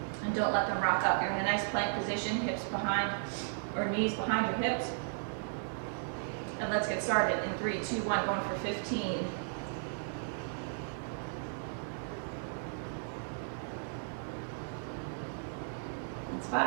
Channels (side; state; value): left; silent; digital silence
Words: And don't let them rock up. You're in a nice plank position, hips behind, or knees behind your hips. And let's get started in 3, 2, 1, going for 15. It's